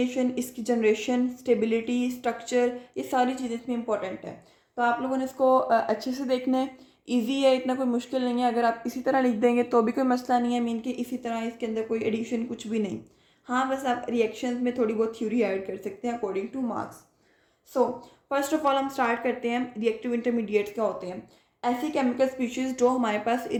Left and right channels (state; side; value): identical; both; correlation 1.00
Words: इसकी जनरेशन, स्टेबिलिटी, स्ट्रक्चर, ये सारी चीज़ें इसमें इंपॉर्टेंट है। तो आप लोगों ने इसको अच्छे से देखना है। ईजी है, इतना कोई मुश्किल नहीं है। अगर आप इसी तरह लिख देंगे तो भी कोई मसला नहीं है, मीन कि इसी तरह इसके अंदर कोई एडिशन कुछ भी नहीं। हाँ, बस आप रिएक्शंस में थोड़ी बहुत थ्योरी ऐड कर सकते हैं according two marks. So first of all हम स्टार्ट करते हैं, रिएक्टिव इंटरमीडिएट्स क्या होते हैं। ऐसी केमिकल स्पीशीज़ जो हमारे पास